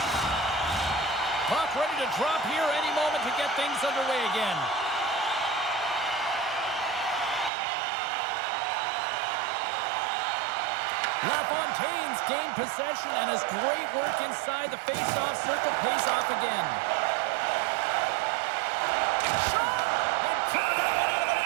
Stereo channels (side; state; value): left; drops out; at 7.5 s